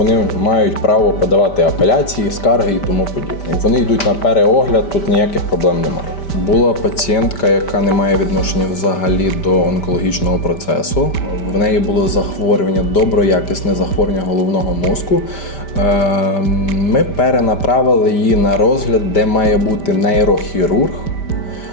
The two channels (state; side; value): late; right; 5.1 ms